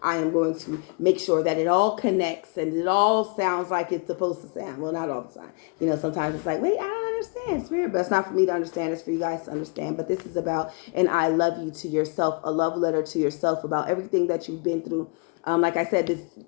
I am going to make sure that it all connects and it all sounds like it's supposed to sound. Well, not all the time. You know, sometimes it's like, wait, I don't understand, spirit. But it's not for me to understand. It's for you guys to understand. But this is about an I love you to yourself, a love letter to yourself about everything that you've been through. Like I said,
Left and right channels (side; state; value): right; quieter; 36.0 dB